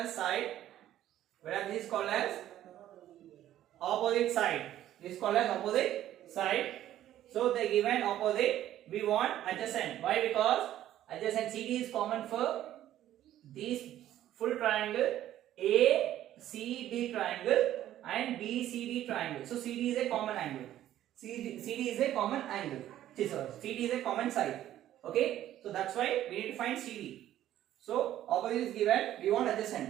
side, whereas this is called as opposite side. This is called as opposite side. So the given opposite, we want adjacent. Why? Because adjacent CD is common for this full triangle, ACD triangle and BCD triangle. So CD is a common angle. CD is a common angle. CD is a common side. Okay, so that's why we need to find CD. So opposite is given, we want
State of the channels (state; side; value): quieter; left; 12.6 dB